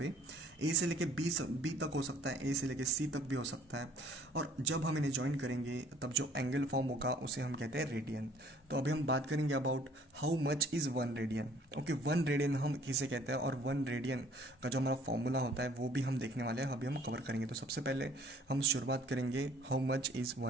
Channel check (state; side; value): normal; both; correlation 0.57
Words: ए से लेके बी तक हो सकता है, ए से लेके सी तक भी हो सकता है, और जब हम इन्हें ज्वाइन करेंगे तब जो एंगल फॉर्म होगा उसे हम कहते हैं रेडियन। तो अभी हम बात करेंगे about how much is 1 radian. Okay, 1 radian हम किसे कहते हैं, और 1 रेडियन का जो हमारा फॉर्मूला होता है वो भी हम देखने वाले हैं, अभी हम कवर करेंगे। तो सबसे पहले हम शुरुआत करेंगे हाउ मच इज़